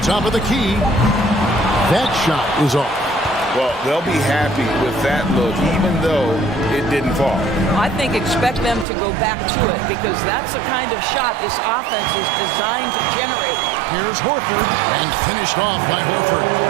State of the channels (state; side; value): drops out; left; at 8.8 s